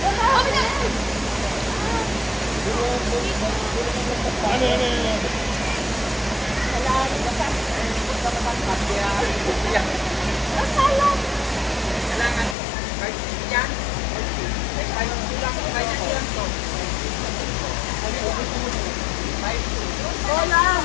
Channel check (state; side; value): drops out; right; at 12.6 s